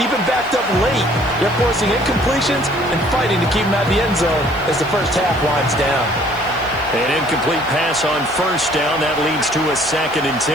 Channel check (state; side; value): noise; right; hiss, 24 dB below the sound